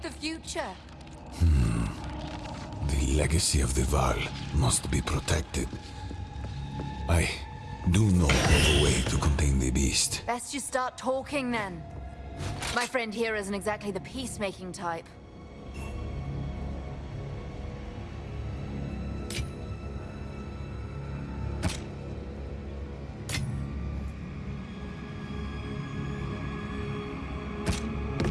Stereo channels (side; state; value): both; identical; correlation 1.00